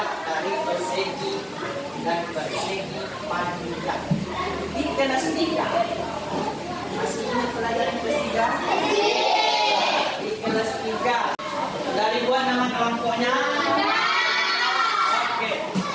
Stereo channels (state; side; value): identical; both; correlation 1.00